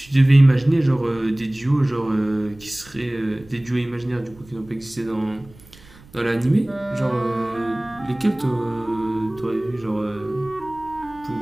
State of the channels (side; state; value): right; noise; rumble, 24 dB below the sound